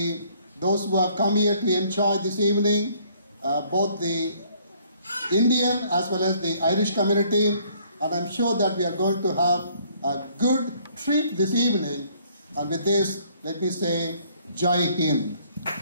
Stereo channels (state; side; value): inverted; both; correlation -0.62